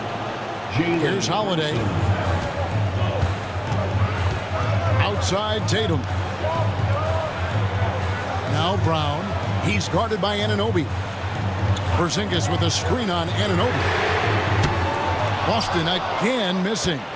Jalen. Here's Holiday. Outside Tatum. Now Brown. He's guarded by Anunoby. Porzingis with a screen on Anunoby. Boston again missing.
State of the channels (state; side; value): identical; both; correlation 1.00